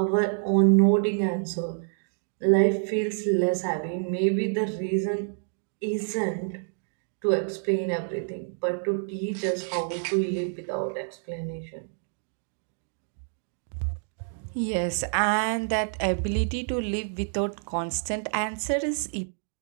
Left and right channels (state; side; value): silent; left; digital silence